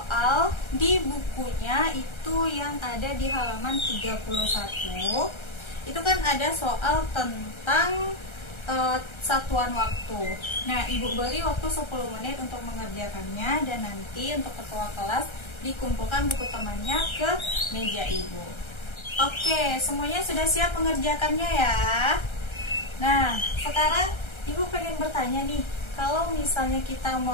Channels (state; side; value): late; right; 1.3 ms